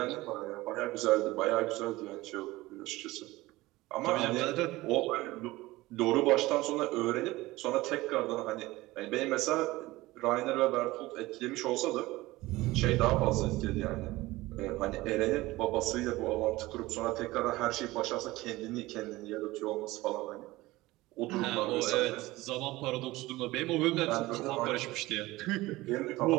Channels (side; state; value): left; quieter; 19.2 dB